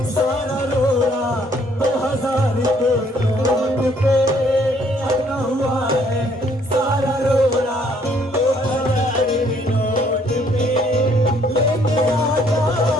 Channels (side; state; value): both; normal; correlation 0.64